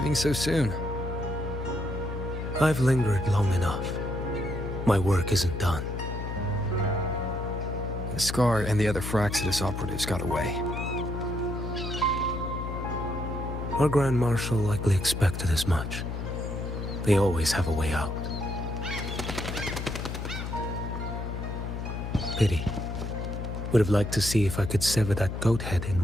so soon? I've lingered long enough. My work isn't done. The Scar and the other Fraxidus operatives got away. Our Grand Marshal likely expected as much. They always have a way out. Pity. Would have liked to see if I could sever that goat head in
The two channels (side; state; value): left; noise; hum, 5 dB below the sound